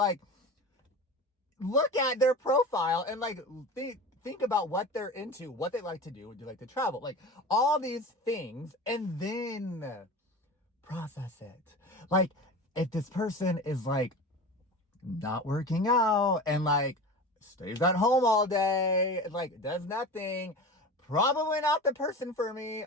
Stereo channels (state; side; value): normal; both; correlation 0.32